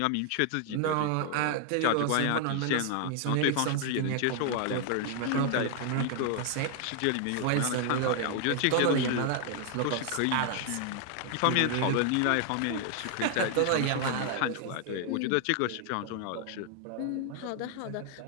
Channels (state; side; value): different; both; correlation 0.00